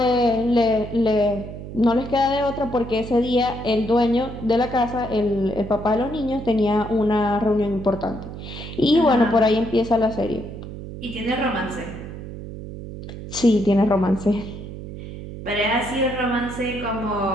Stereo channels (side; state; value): right; noise; hum, 10 dB below the sound